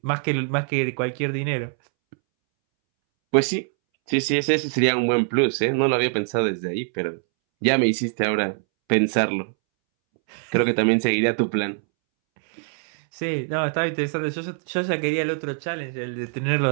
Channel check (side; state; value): left; silent; 63 dB below the other